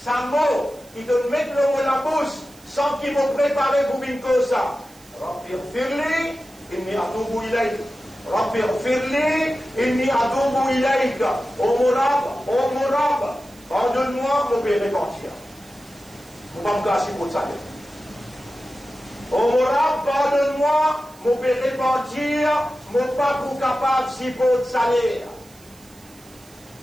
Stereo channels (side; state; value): right; noise; hiss, 25 dB below the sound